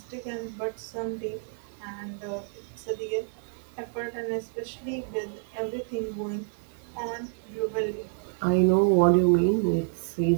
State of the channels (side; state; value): left; silent; 59 dB below the other